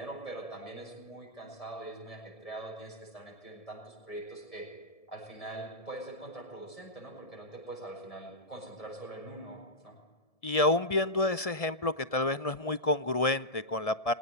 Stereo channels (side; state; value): right; late; 1.7 ms